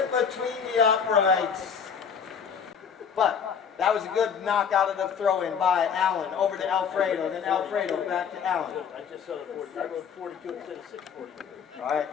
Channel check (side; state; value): right; quieter; 6.9 dB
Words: between the uprights. But that was a good knockout of the throw-in by Allen over to Alfredo. Then Alfredo back to Allen. I just saw the 40. I wrote 42 instead of 642. All right,